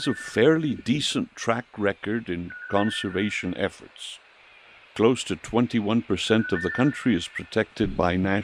a fairly decent track record in conservation efforts. Close to 21% of the country is protected by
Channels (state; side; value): identical; both; correlation 1.00